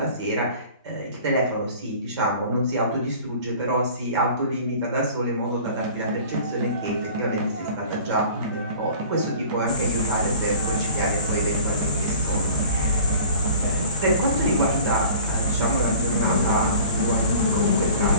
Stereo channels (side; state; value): both; inverted; correlation -0.44